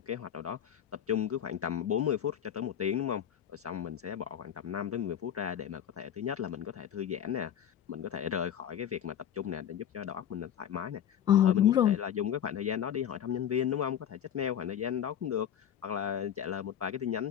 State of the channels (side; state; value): right; quieter; 9.6 dB